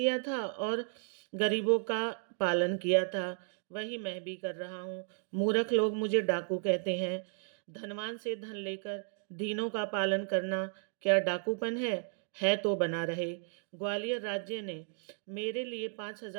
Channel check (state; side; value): silent; left; 55 dB below the other